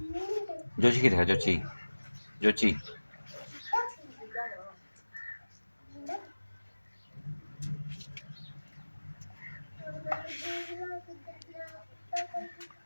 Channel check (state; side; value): inverted; both; correlation -1.00